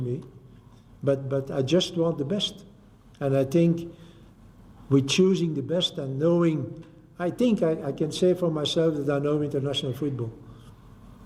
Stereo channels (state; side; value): identical; both; correlation 1.00